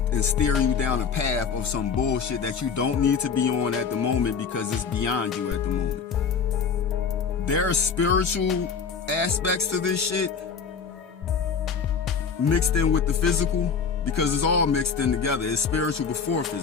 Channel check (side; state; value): right; quieter; 6.0 dB